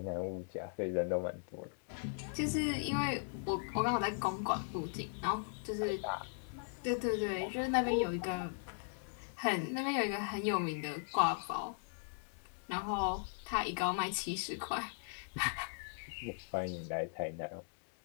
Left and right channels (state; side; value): silent; right; digital silence